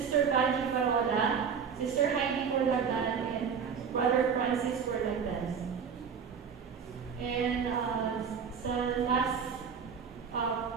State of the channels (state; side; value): quieter; left; 6.6 dB